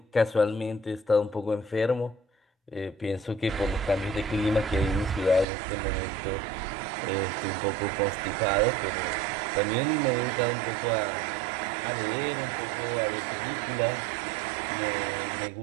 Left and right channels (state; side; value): drops out; left; at 5.5 s